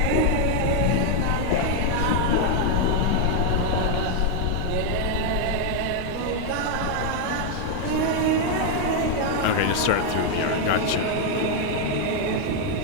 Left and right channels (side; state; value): both; different; correlation 0.01